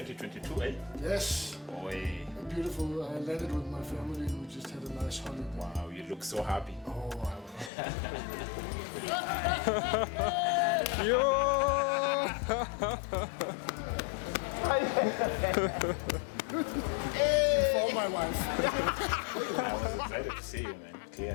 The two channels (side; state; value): right; drops out; at 7.7 s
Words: eh? Yes. Oi. Beautiful. I landed with my family and we just had a nice holiday. Wow, you look so happy. Oh, Yo! for my wife. I was excited to see you, man,